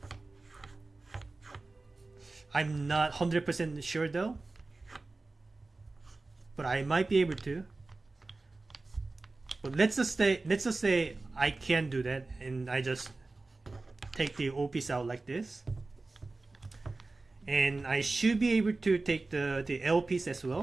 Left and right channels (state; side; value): quieter; left; 3.4 dB